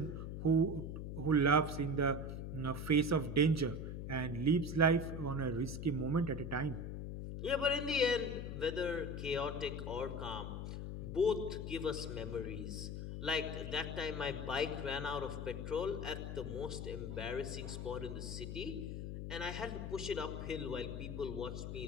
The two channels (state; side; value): noise; left; hum, 5 dB below the sound